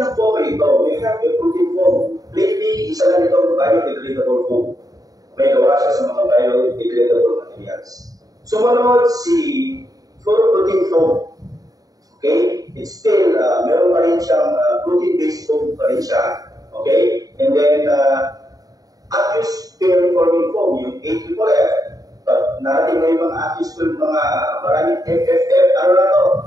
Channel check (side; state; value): left; late; 0.18 ms